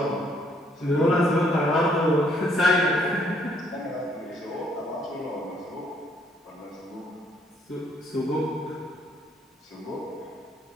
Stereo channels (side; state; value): both; normal; correlation 0.67